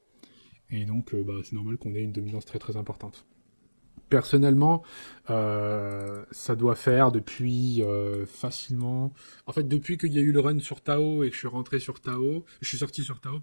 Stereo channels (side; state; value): both; inverted; correlation -1.00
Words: Et donc, bah, c'est normal qu'on ait une dominance très très importante. Personnellement, ça doit faire depuis facilement. En fait, depuis qu'il y a eu le run sur Tao et que je suis rentré sur Tao, je suis sorti sur Tao,